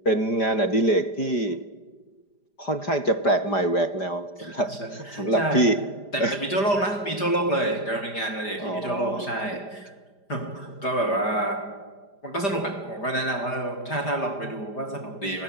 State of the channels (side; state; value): right; late; 5.0 ms